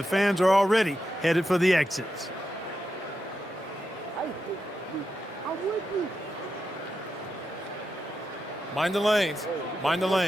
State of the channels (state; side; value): normal; both; correlation 0.87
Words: fans are already headed for the exits. Mind the lanes. Mind the